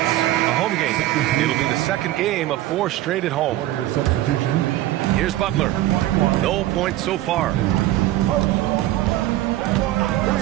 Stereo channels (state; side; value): quieter; left; 15.0 dB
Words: A home game. It'll be the second game of 4 straight at home. Here's Butler. No points so far.